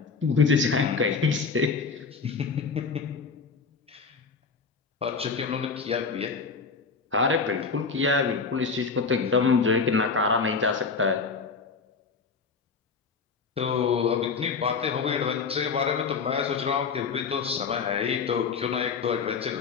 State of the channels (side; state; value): right; quieter; 5.0 dB